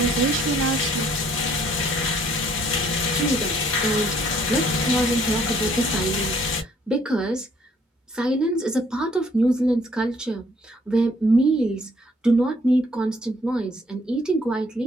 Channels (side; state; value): both; normal; correlation 0.63